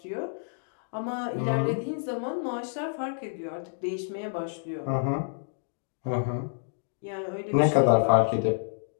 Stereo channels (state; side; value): silent; right; digital silence